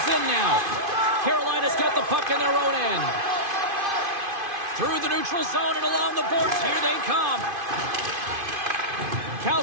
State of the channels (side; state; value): left; late; 2.5 ms